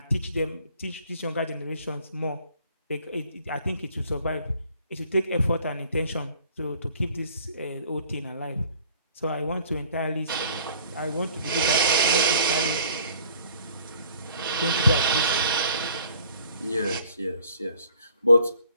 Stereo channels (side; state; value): both; inverted; correlation -0.55